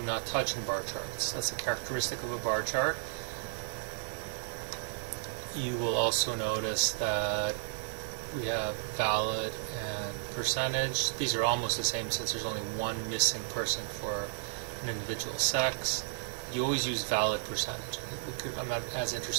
not touch in bar charts. That's a characteristic of a bar chart. You will also notice that we have valid and percentage. These are almost the same since there's only one missing person for an individual sex. You always use valid percentage. I'm not as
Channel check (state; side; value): silent; left; 56 dB below the other